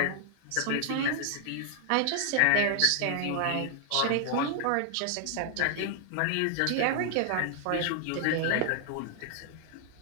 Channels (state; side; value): different; both; correlation 0.00